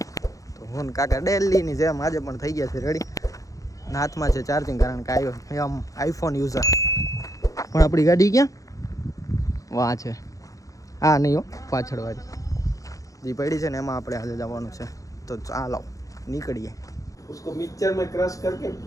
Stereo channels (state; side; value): late; right; 0.16 ms